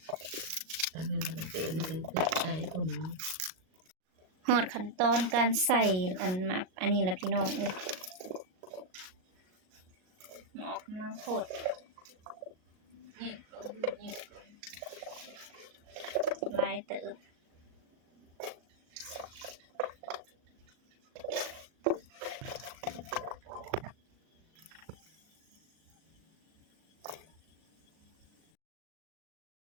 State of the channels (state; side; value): late; left; 38 ms